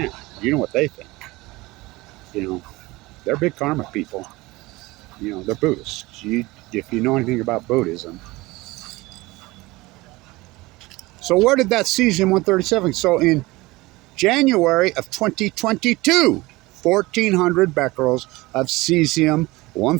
You know what they think. You know, they're big karma people. You know, they're Buddhists. If you know anything about Buddhism. So where did that Cesium 137? So in January of 2022, 1,400 becquerels of Cesium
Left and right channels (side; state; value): left; quieter; 21.1 dB